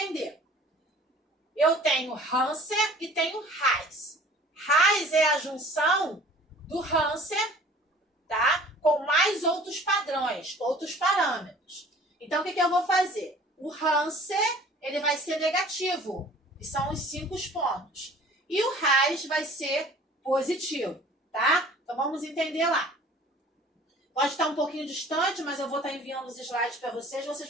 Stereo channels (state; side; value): normal; both; correlation 0.49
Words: Eu tenho Hansen e tenho Reis. Reis é a junção do Hansen, tá? Com mais outros padrões, outros parâmetros. Então, o que eu vou fazer? O Hansen, ele vai ser negativo, que são os 5 pontos. E o Reis vai ser positivo, tá? Então, vamos entender lá. Pode estar um pouquinho distante, mas eu vou estar enviando os slides para vocês